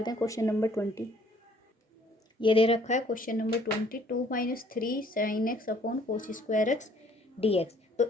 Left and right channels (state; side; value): normal; both; correlation 0.60